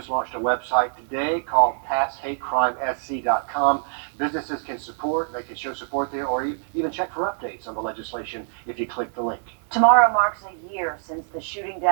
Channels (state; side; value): silent; left; 62 dB below the other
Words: launched a website today called PassHateCrimeSC.com. Businesses can support, they can show support there, or even check for updates on the legislation if you click the link. Tomorrow marks a year since the shooting